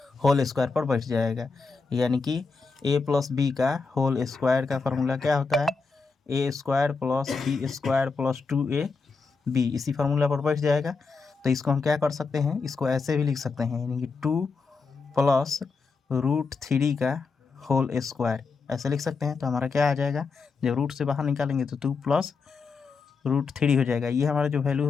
whole square पर बैठ जाएगा, यानी कि a + b का होल स्क्वायर का फार्मूला क्या होता है, a² + b² + 2ab, इसी फार्मूला पर बैठ जाएगा। तो इसको हम क्या कर सकते हैं, इसको ऐसे भी लिख सकते हैं, यानी कि 2 + √3 का होल स्क्वायर ऐसे लिख सकते हैं। तो हमारा क्या आ जाएगा, जब रूट से बाहर निकालेंगे तो 2 + √3 हो जाएगा। ये हमारा जो वैल्यू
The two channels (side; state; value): right; quieter; 4.6 dB